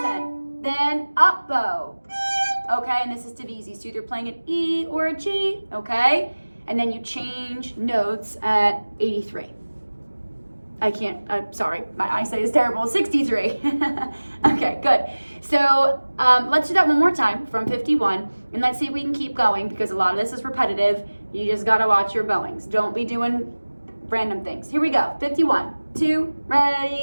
then up bow. Okay, and this is Divisi, so either playing an E or a G, okay? And then you change notes at 83. I'm sorry, my eyesight is terrible, 63. Okay, good. So let's do that one more time from 51, and let's see if we can keep going because a lot of this is repetitive. You just gotta watch your bowings. Don't be doing random things. Here we go, 51, 2,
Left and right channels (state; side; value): inverted; both; correlation -1.00